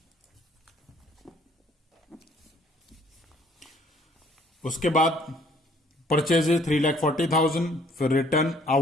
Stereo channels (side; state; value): both; normal; correlation 0.60